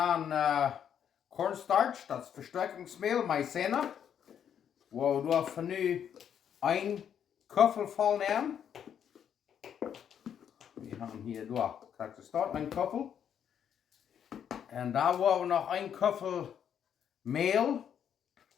Cornstarch, das Verstärkungsmehl, Maizena. Wo wir von nu 1 Köffel voll nehmen. Wir haben hier durch, kriegst du dort 1 Köffel. Und da wollen wir noch 1 Köffel Mehl.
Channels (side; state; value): right; quieter; 8.7 dB